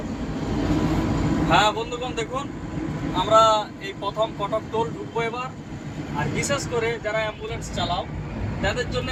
হ্যাঁ বন্ধুগণ, দেখুন আমরা এই প্রথম কটক টোল ঢুকবো এবার। আর বিশেষ করে যারা অ্যাম্বুলেন্স চালাও তাদের জন্য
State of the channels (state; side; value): identical; both; correlation 1.00